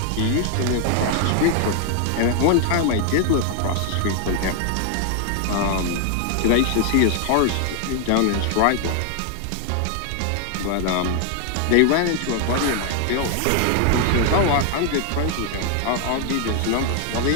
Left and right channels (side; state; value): both; different; correlation 0.00